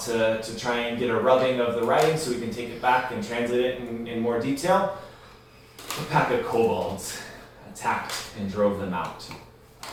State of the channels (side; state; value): both; identical; correlation 1.00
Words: to try and get a rubbing of the writing so we can take it back and translate it in more detail, a pack of kobolds attacked and drove them out.